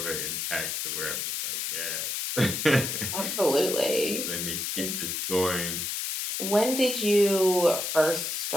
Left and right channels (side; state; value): left; noise; hiss, 2 dB below the sound